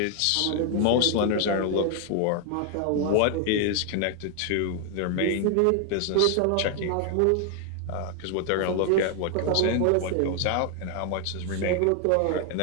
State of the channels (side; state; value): both; different; correlation 0.00